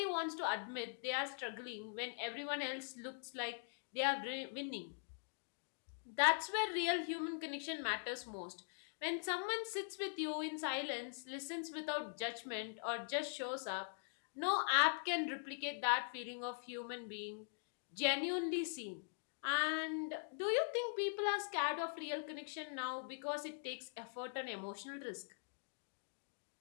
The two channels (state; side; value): silent; right; digital silence